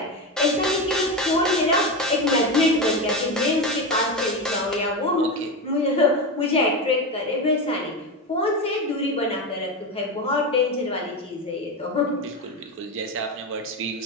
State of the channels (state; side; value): normal; both; correlation 0.17